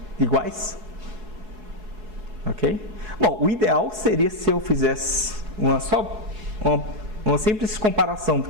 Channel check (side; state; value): left; late; 4.7 ms